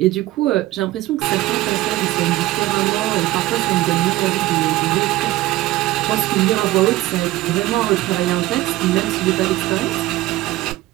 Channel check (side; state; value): left; quieter; 16.8 dB